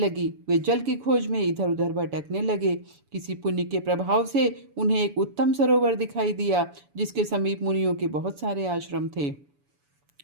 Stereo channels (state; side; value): late; left; 7.0 ms